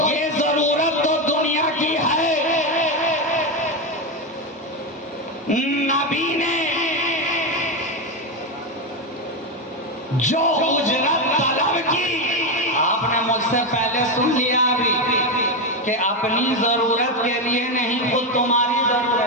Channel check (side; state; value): both; normal; correlation 0.10